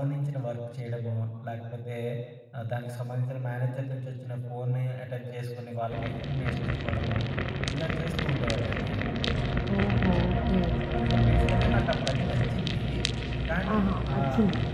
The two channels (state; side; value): identical; both; correlation 1.00